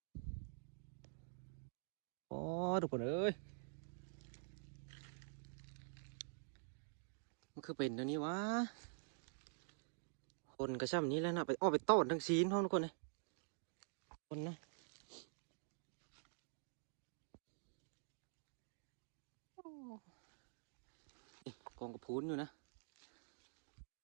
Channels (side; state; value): left; silent; digital silence